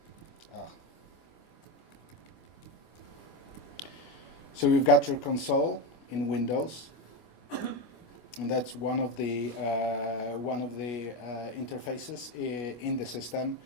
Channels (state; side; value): late; right; 25 ms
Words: So you've got your console in Windows, and that's one of the interfaces in the system.